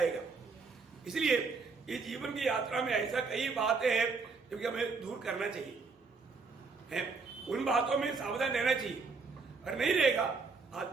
इसलिए ये जीवन की यात्रा में ऐसा कई बातें हैं जो कि हमें दूर करना चाहिए है, उन बातों में सावधान रहना चाहिए। और नहीं रहेगा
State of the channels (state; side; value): quieter; left; 4.5 dB